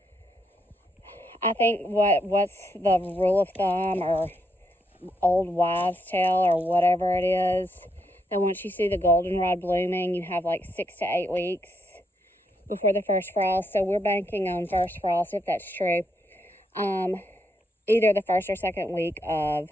I think what's the rule of thumb or old wives' tale or whatever it is, that once you see the goldenrod blooming, you have like 6 to 8 weeks before the first frost. So we're banking on first frost, if that's true. Either the first or second week of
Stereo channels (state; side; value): normal; both; correlation 0.78